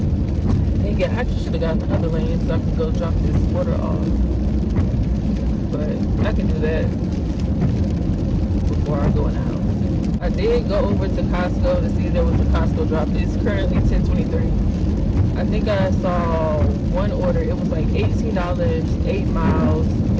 Dang it, I just should have gotten the other lane so I could go drop this order off, but I can do that before I go in the house. I did go over to Costco to see if there was a Costco drop. It's currently 10:23. I think I saw one order. It was like $18, 8 miles.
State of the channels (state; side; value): identical; both; correlation 1.00